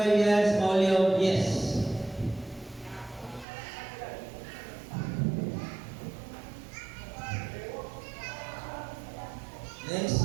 yes. Maulion, yes.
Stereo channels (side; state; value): left; drops out; at 3.5 s